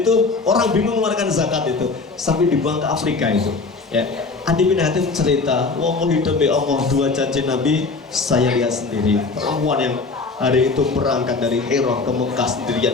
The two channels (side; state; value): right; quieter; 4.1 dB